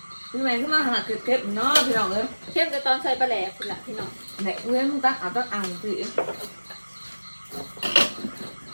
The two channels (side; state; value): both; inverted; correlation -1.00